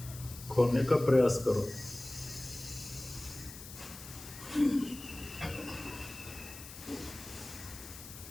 खोने का प्रयास करो।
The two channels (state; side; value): noise; left; hiss, 14 dB below the sound